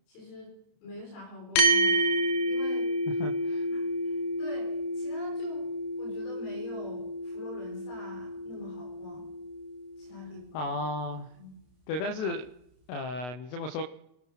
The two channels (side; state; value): right; late; 31 ms